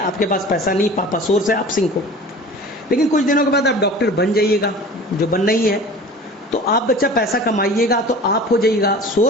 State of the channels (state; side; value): normal; both; correlation 0.40